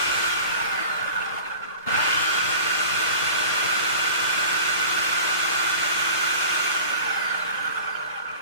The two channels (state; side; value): inverted; both; correlation -0.41